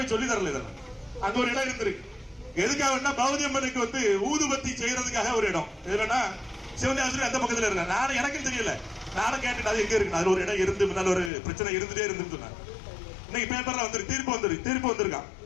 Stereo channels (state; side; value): drops out; right; at 11.3 s